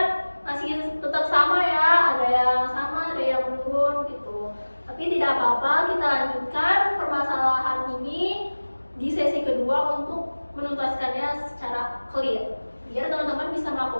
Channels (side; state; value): both; inverted; correlation -1.00